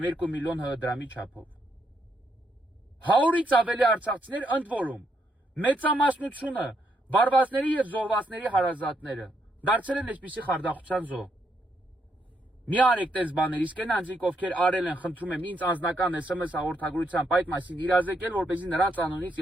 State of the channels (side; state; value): both; normal; correlation 0.77